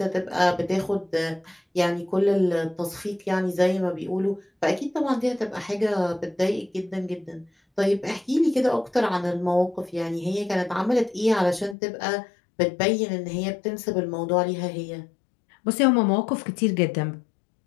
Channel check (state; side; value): drops out; right; at 11.8 s